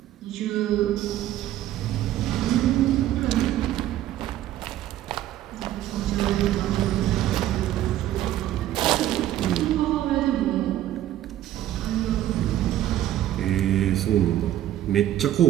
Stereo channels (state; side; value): quieter; left; 13.0 dB